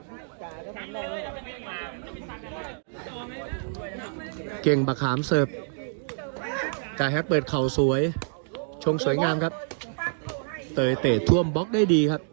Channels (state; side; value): silent; left; digital silence